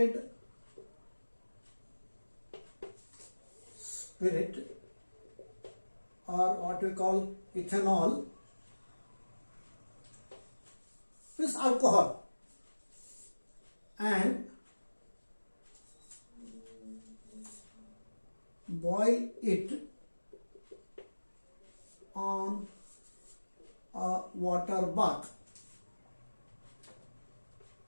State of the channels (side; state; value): both; inverted; correlation -1.00